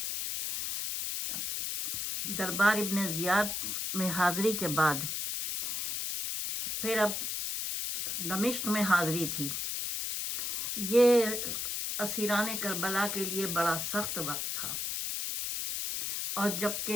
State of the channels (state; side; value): noise; left; hiss, 2 dB below the sound